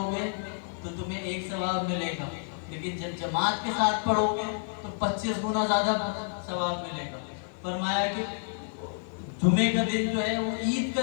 گے تو تمہیں 1 ثواب ملے گا، لیکن جب جماعت کے ساتھ پڑھو گے تو 25 گنا زیادہ ثواب ملے گا۔ فرمایا کہ جمعے کا دن جو ہے وہ عید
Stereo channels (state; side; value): silent; right; digital silence